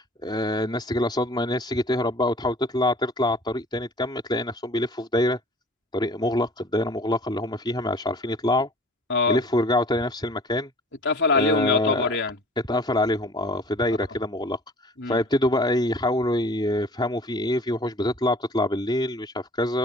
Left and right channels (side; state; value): both; normal; correlation 0.47